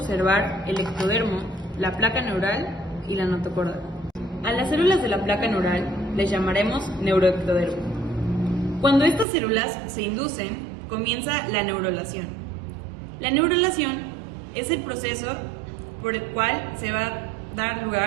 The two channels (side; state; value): left; drops out; at 9.2 s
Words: el ectodermo, la placa neural y la notocorda. A las células de la placa neural les llamaremos neuroectodermo. Cuando estas células se inducen, comienza la neurulación. La neurulación es el proceso por el cual se va a dar